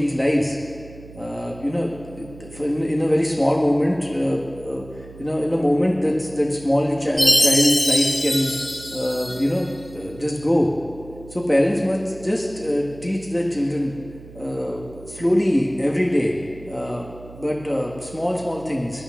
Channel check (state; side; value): noise; right; hum, 18 dB below the sound